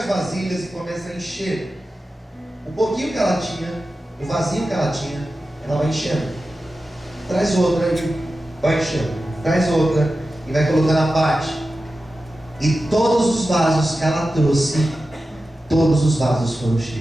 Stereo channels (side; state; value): both; normal; correlation 0.93